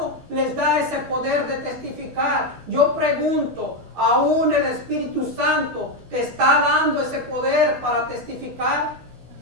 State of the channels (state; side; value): late; left; 12 ms